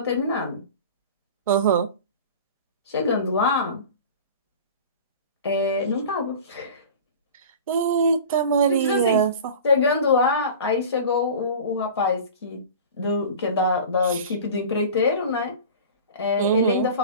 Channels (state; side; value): inverted; both; correlation -0.36